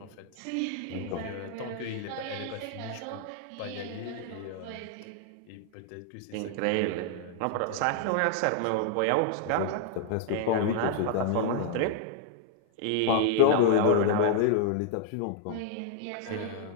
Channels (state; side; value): different; both; correlation 0.00